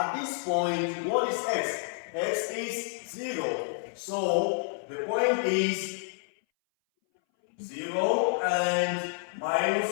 this point, what is x? X is 0. So the point is 0 and minus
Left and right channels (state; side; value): silent; right; 58 dB below the other